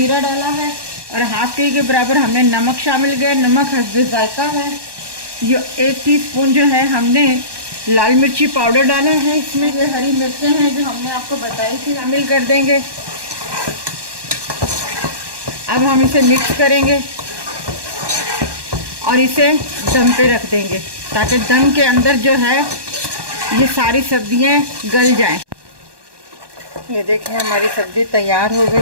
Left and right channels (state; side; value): late; left; 1.1 ms